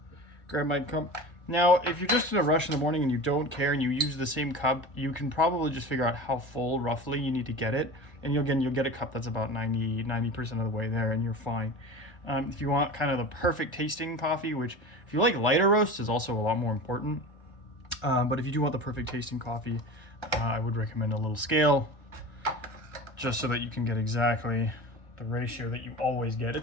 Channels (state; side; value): late; right; 1.4 ms